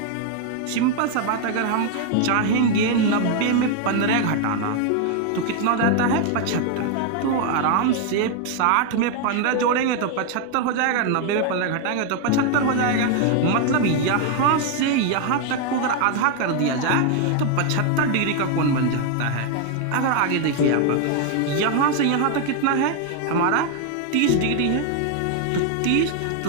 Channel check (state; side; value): different; both; correlation 0.01